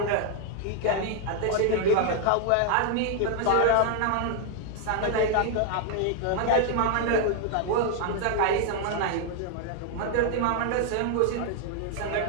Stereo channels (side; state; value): both; different; correlation 0.00